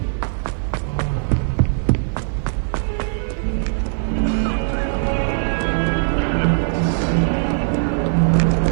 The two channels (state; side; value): silent; left; 65 dB below the other